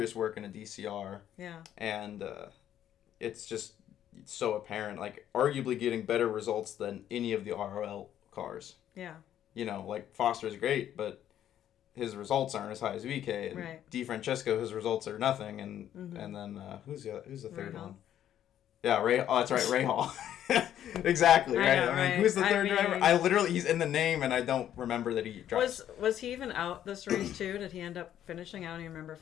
work in a DCR. Yeah, and it's just so apparent. Like arguably getting better results than any of the ROL cars. Yeah. Like Foster's great, but his results aren't as high as VK. And right. DeFrancesco, his results are nothing. And and then who's the third one? Yeah, Ray. Oh, that's right, Ray Hall. Exactly, right? I mean, who's the third driver? I literally, he's in the name, and I don't remember that he drives. Was he even out this race too? Did he end up finishing? I don't even remember if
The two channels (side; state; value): right; quieter; 10.9 dB